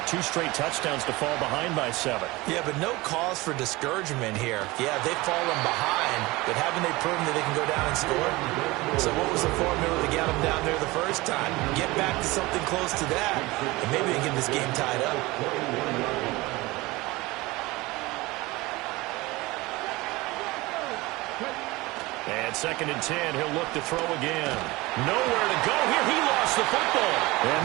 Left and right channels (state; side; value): quieter; left; 21.4 dB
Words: 2 straight touchdowns to fall behind by 7. Yeah, but no cause for discouragement here. Yeah, they've fallen behind, but haven't they proven that they can go down and score? So what was the formula to get them down there the first time? Get back to something close to that, and maybe they get this game tied up. And 2nd and 10, he'll look to throw again. Nowhere to go here. He lost the football. And